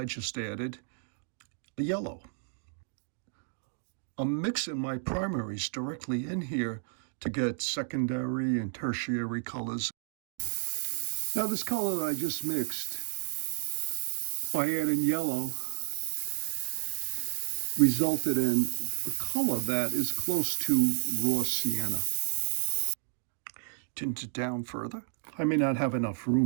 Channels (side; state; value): left; silent; digital silence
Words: just added a yellow. I'm mixing my primaries directly in here to get secondary and tertiary colors. Now this color that I just mixed, by adding yellow, resulted in a color that is close to raw sienna. Tint it down further. I may not have enough